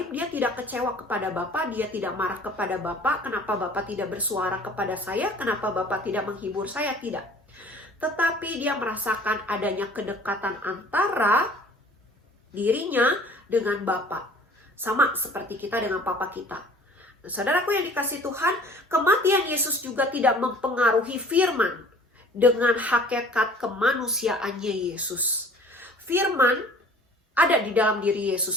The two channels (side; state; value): both; normal; correlation 0.50